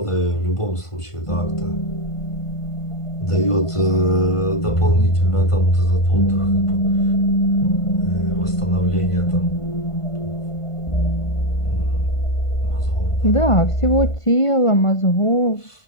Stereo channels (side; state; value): right; late; 1.5 ms